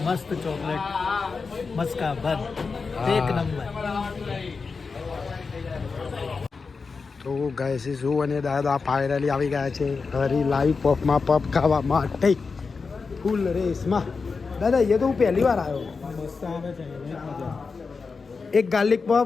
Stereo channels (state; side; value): quieter; right; 4.7 dB